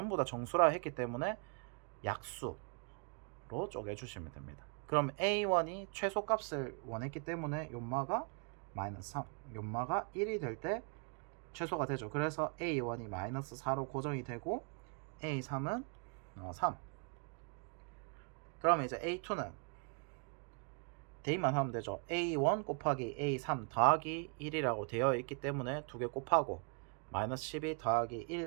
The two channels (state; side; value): quieter; left; 39.2 dB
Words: 다 정수라 했기 때문에 약수로 쪼개주시면 됩니다. 그럼 A1이 최소값을 원했기 때문에 요마가 마이너스 3, 요마가 1이 될 때 최소가 되죠. 그래서 A1이 마이너스 4로 고정이 되고, A3은 3. 그러면 이제 A2는 대입만 하면 되죠. A1 곱하기 A3 더하기 1이라고 되어 있기 때문에 두 개 곱하고 마이너스 12 더하기